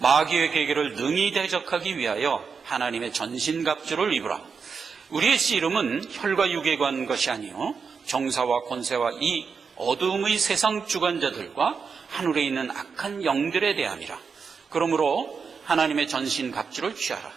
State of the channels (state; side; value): quieter; left; 5.6 dB